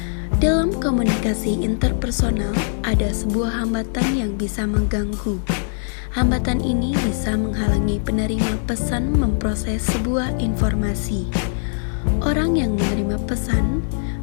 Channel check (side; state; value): right; silent; digital silence